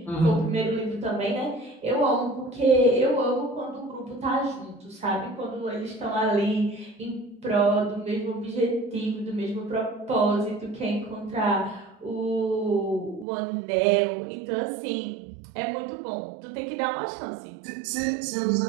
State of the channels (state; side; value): drops out; left; at 13.2 s